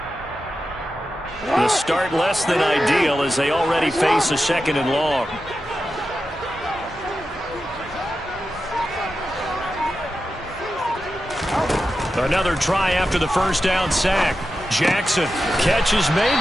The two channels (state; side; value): normal; both; correlation 0.91